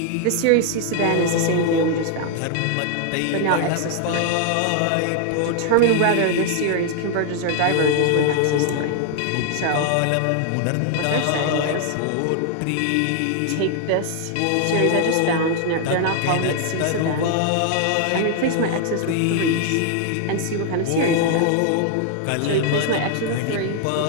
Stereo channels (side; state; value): both; different; correlation 0.00